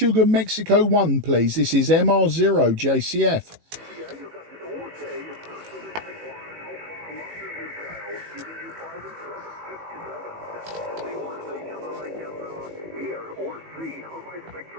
Mexico 1, please. This is MR0 JCF.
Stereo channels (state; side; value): late; left; 18 ms